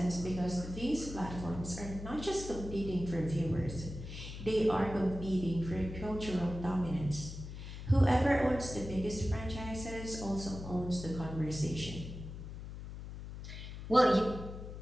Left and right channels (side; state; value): left; noise; hum, 10 dB below the sound